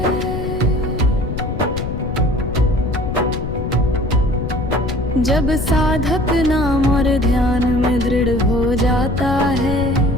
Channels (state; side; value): noise; left; rumble, 5 dB below the sound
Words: जब साधक नाम और ध्यान में दृढ़ हो जाता है